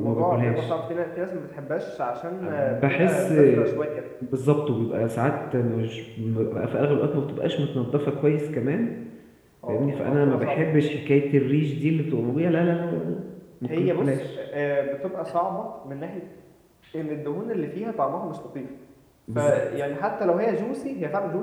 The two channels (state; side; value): identical; both; correlation 1.00